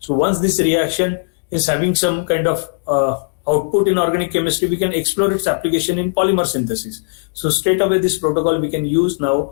once this reaction is having some kind of output in organic chemistry, we can explore its application in polymer synthesis. So straight away this protocol we can use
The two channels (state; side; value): silent; right; digital silence